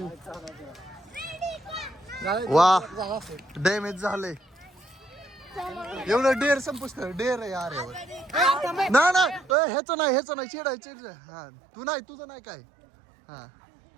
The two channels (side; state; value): left; drops out; at 9.6 s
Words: वा डॅमेज झालंय. एवढं डेअर संपुस्त डेअर आहे यार एवढं. नाही नाही ह्याचं नाही चिडाय चिड. हा तू नाही तुझं नाही काय. हा